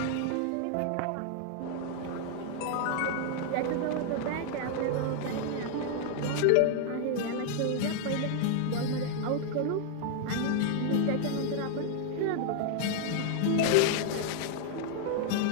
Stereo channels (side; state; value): both; different; correlation 0.00